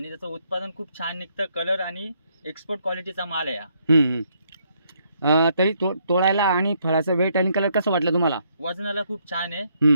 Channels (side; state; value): both; inverted; correlation -0.72